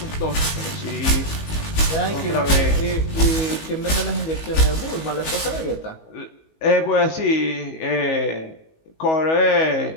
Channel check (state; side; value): late; right; 19 ms